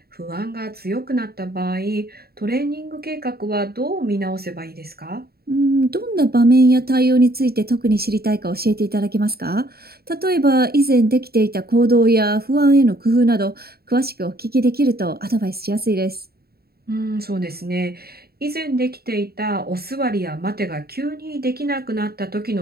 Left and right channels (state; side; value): late; left; 0.45 ms